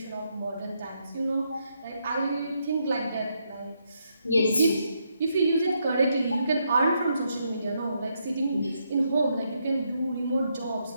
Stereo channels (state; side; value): inverted; both; correlation -0.78